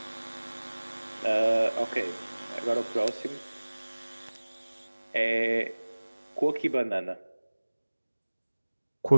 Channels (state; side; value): inverted; both; correlation -1.00